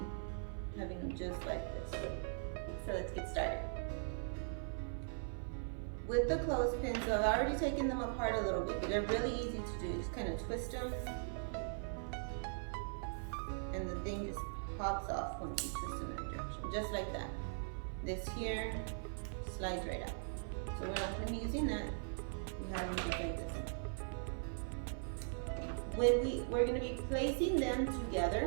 having them just like this. So let's get started. With the clothespins, so I've already taken them apart a little bit, but they're really easy to do. Just kind of twist them, and the thing just pops off once you twist in that direction, just like that. This here slides right out. So we're not going to be using that. We have them just like this. We're going to be placing them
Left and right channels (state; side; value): silent; left; 51 dB below the other